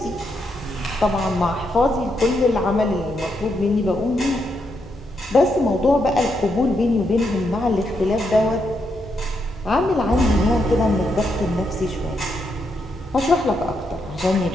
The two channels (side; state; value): both; normal; correlation 0.80